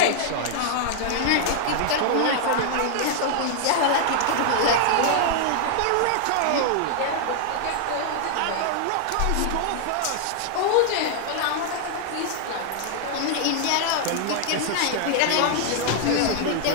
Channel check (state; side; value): different; both; correlation -0.01